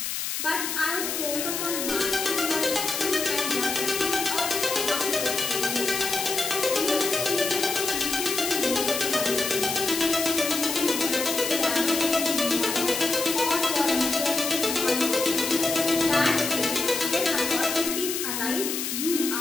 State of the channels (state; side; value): noise; left; hiss, 3 dB below the sound